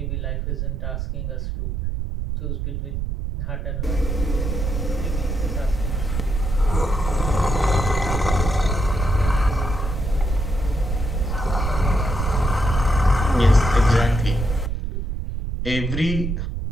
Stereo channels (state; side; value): noise; right; rumble, 3 dB below the sound